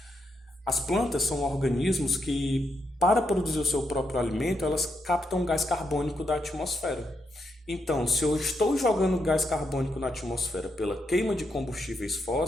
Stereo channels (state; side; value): normal; both; correlation 0.81